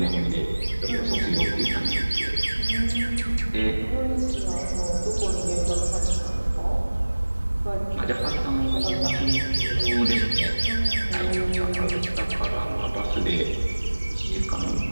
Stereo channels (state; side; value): inverted; both; correlation -1.00